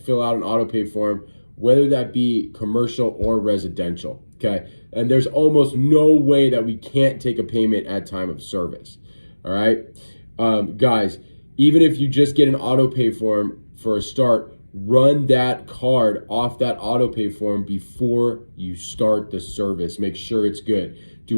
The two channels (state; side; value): inverted; both; correlation -1.00